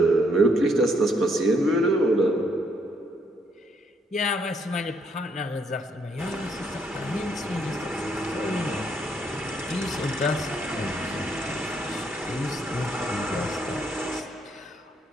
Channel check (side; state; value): both; normal; correlation 0.71